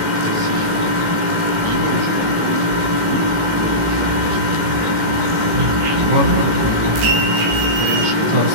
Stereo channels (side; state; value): left; late; 18 ms